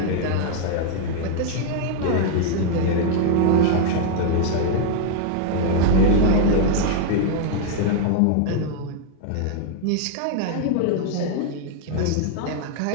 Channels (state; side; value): different; both; correlation 0.00